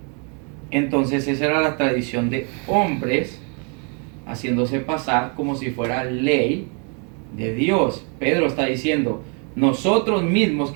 Entonces esa era la tradición de hombres haciéndose pasar como si fuera ley de Dios. Pedro está diciendo, nosotros mismos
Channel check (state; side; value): quieter; left; 37.9 dB